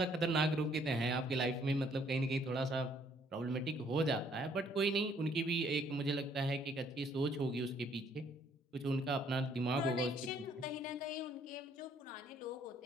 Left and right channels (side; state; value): both; normal; correlation 0.64